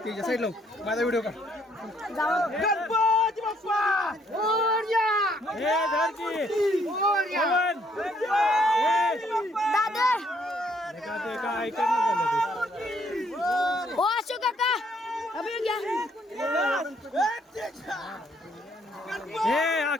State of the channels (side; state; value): both; normal; correlation 0.68